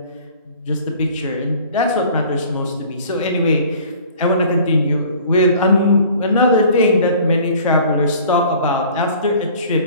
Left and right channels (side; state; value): both; inverted; correlation -0.49